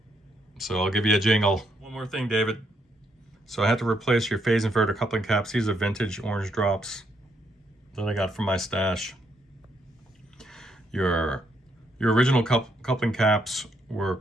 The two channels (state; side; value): normal; both; correlation 0.75